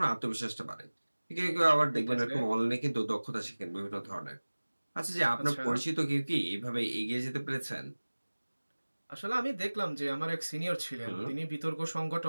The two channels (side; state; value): both; inverted; correlation -1.00